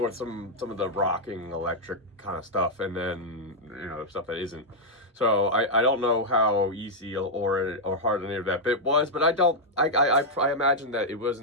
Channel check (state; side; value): normal; both; correlation -0.04